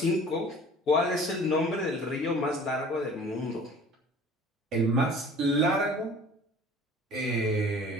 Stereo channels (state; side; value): normal; both; correlation 0.47